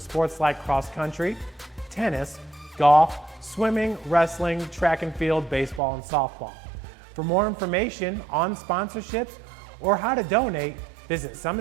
like cross country, tennis, golf, swimming, wrestling, track and field, baseball, and softball. For more information on sponsorships or how to donate, visit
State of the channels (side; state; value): left; drops out; at 5.8 s